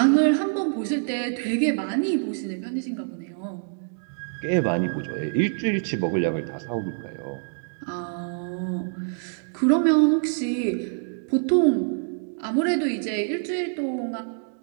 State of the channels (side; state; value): left; silent; digital silence